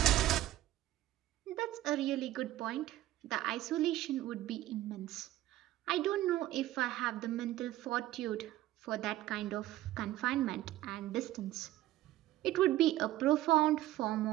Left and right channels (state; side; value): quieter; left; 14.9 dB